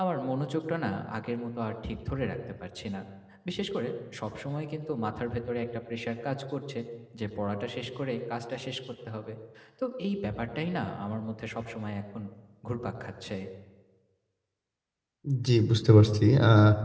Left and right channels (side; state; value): both; identical; correlation 1.00